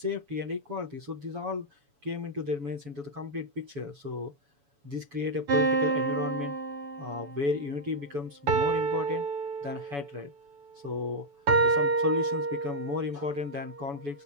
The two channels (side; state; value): left; late; 7.0 ms